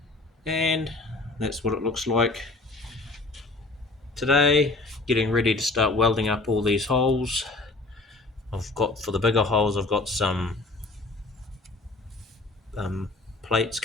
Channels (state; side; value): quieter; right; 3.2 dB